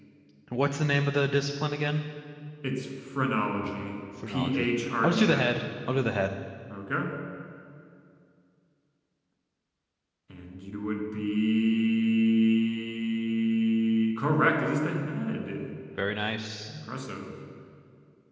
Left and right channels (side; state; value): both; identical; correlation 1.00